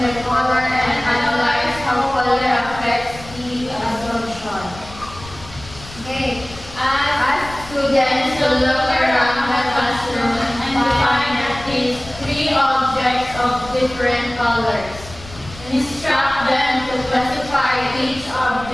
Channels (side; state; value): left; noise; rumble, 17 dB below the sound